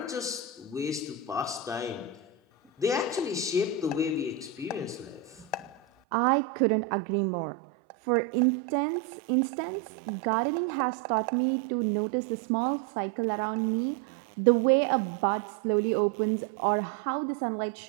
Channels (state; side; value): drops out; left; at 5.9 s